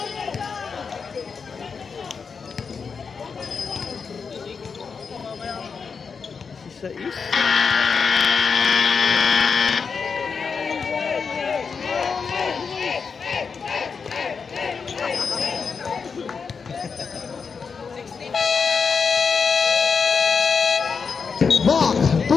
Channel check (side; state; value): right; quieter; 5.6 dB